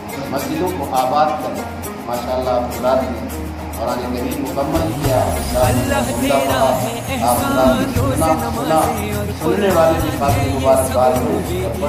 مسجدوں کو آباد کریں۔ ماشاءاللہ آپ حضرات نے قرآن کریم مکمل کیا، سننے والے بھی کافی مبارکباد ہو اور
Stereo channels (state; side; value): identical; both; correlation 1.00